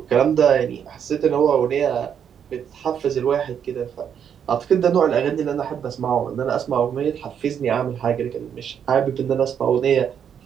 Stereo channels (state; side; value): quieter; left; 8.2 dB